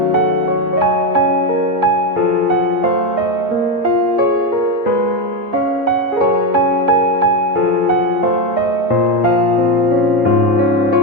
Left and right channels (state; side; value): late; left; 1.7 ms